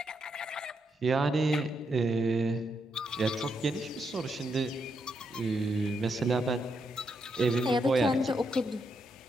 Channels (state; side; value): normal; both; correlation 0.80